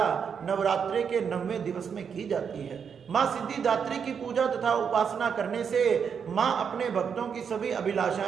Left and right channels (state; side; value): quieter; left; 6.9 dB